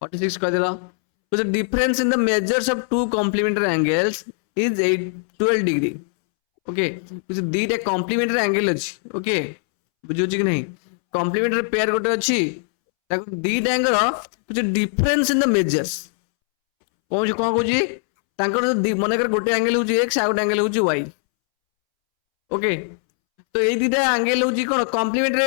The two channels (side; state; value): right; silent; 65 dB below the other